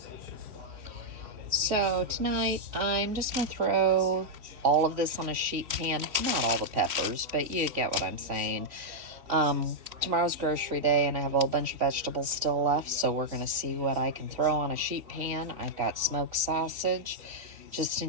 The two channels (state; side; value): late; left; 3.1 ms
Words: So tonight, I'm just gonna throw all of this on a sheet pan. Not all the peppers, but you get what I'm saying. Tomorrow's grocery day, and I have a whole bunch of vegetables still left, so we're gonna see what I can throw on a sheet pan. I've got smoked sausage. Just